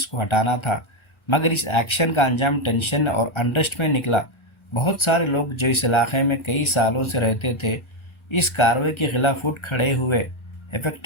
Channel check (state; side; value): late; right; 1.3 ms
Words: को हटाना था, मगर इस एक्शन का अंजाम टेंशन और अनरेस्ट में निकला। बहुत सारे लोग जो इस इलाके में कई सालों से रहते थे, इस कार्रवाई के खिलाफ उठ खड़े हुए।